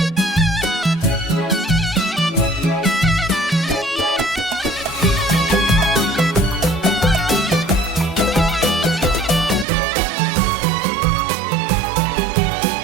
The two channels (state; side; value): drops out; left; at 9.7 s